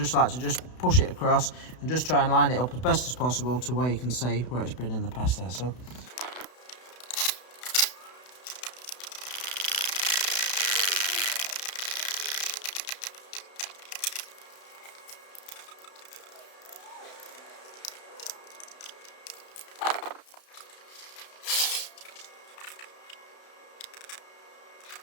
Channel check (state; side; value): late; right; 32 ms